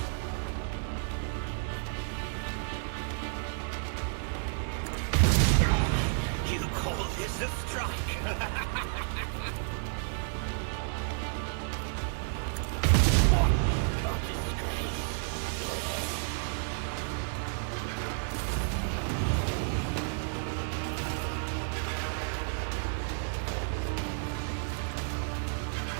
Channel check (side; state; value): left; silent; digital silence